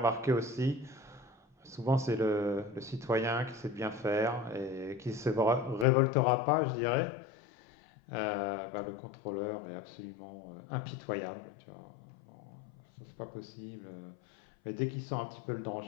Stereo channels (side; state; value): right; drops out; at 5.9 s